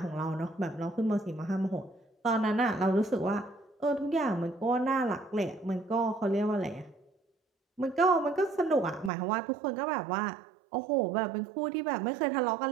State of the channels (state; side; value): drops out; left; at 9.1 s